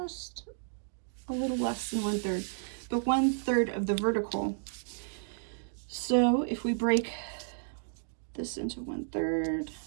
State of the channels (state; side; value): silent; left; digital silence